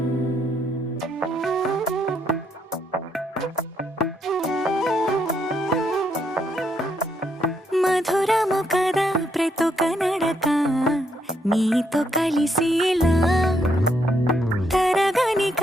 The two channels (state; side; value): normal; both; correlation 0.75